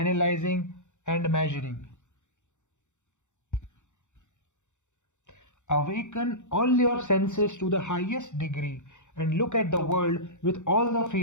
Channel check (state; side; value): late; right; 0.84 ms